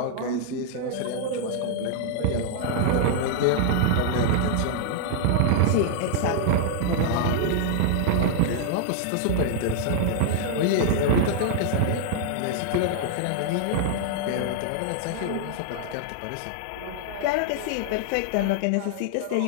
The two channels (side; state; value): both; different; correlation -0.01